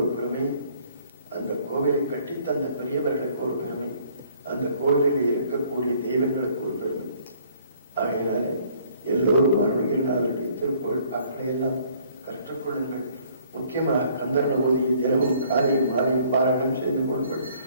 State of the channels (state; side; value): inverted; both; correlation -0.60